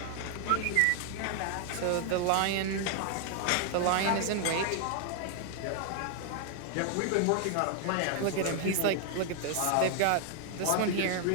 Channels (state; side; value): different; both; correlation 0.00